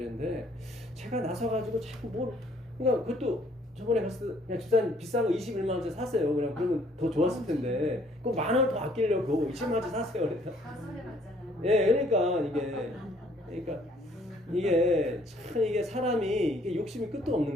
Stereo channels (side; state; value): both; normal; correlation 0.62